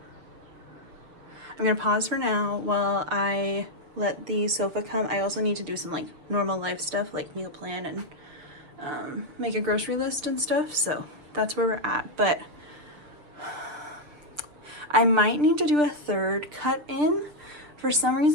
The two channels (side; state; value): left; late; 6.8 ms